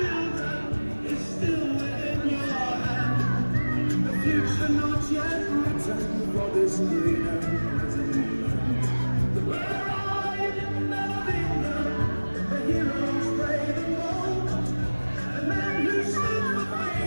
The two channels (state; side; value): inverted; both; correlation -1.00